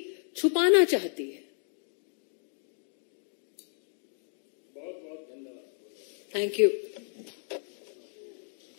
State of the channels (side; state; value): right; silent; 56 dB below the other